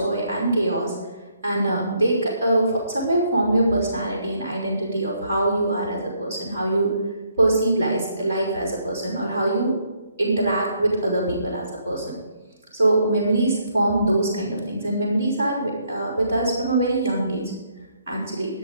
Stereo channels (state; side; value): inverted; both; correlation -0.71